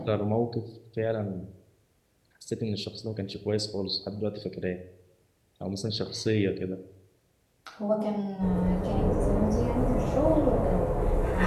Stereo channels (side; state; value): both; identical; correlation 1.00